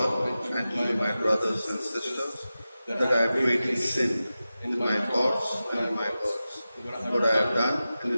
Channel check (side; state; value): both; inverted; correlation -0.94